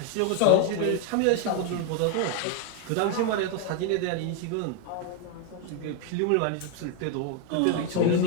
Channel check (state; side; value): different; both; correlation 0.01